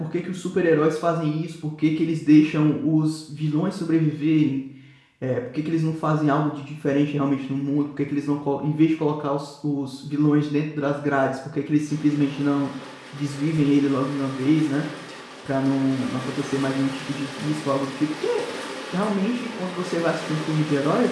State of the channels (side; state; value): both; identical; correlation 1.00